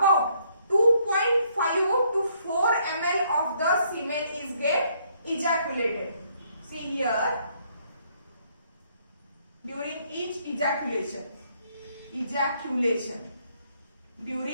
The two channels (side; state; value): both; inverted; correlation -0.69